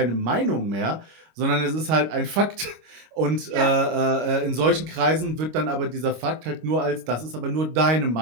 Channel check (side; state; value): left; late; 25 ms